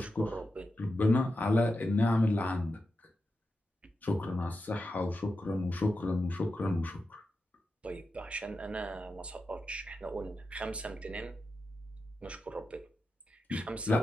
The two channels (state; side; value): normal; both; correlation 0.89